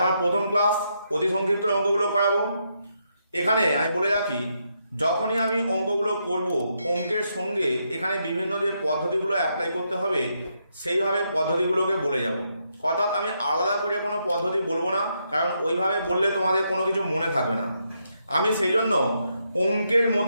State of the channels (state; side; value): inverted; both; correlation -0.79